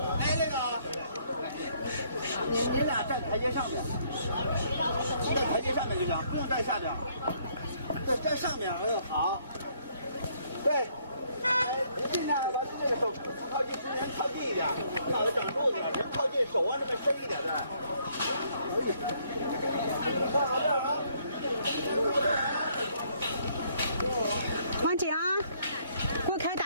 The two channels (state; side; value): inverted; both; correlation -0.67